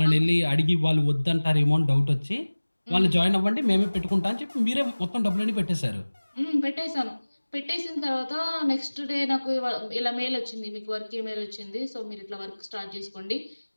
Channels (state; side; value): inverted; both; correlation -1.00